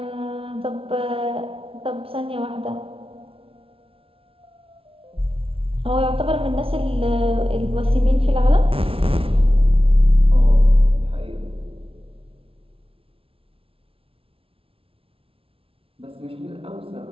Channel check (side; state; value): left; late; 0.26 ms